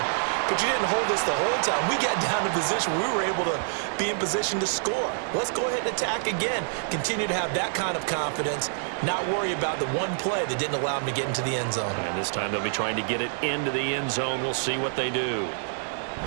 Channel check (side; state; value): left; silent; digital silence